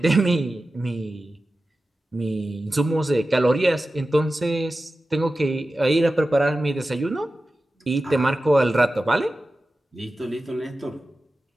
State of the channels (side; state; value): both; normal; correlation 0.94